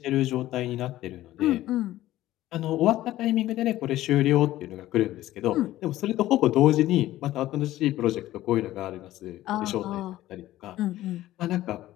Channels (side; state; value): right; quieter; 15.0 dB